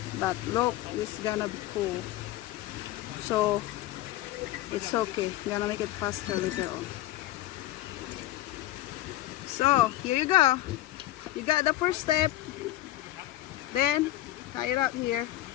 But look, it's gonna be cool. So it's okay. Gonna make it faster later on. So here you go. You got the first step. Then tie it up here.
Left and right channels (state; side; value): quieter; right; 15.2 dB